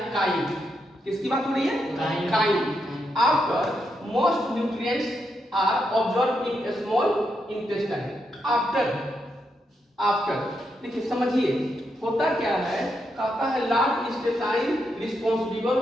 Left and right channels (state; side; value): normal; both; correlation 0.82